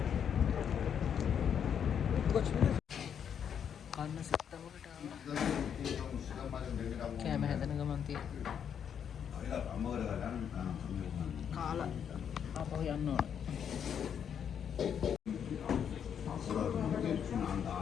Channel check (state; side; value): quieter; right; 8.1 dB